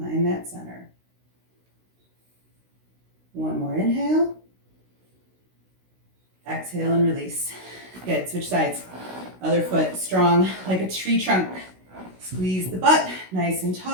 that center. One more inhale. Exhale and release. Good, switch sides. Other foot strong like a tree trunk. Squeeze the butt, nice and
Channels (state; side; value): late; left; 16 ms